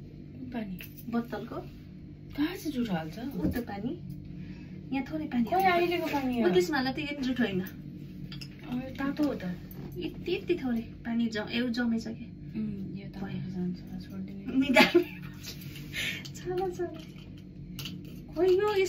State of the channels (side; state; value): both; identical; correlation 1.00